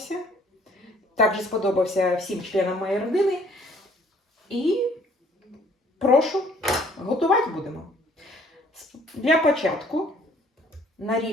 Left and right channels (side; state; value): both; normal; correlation 0.59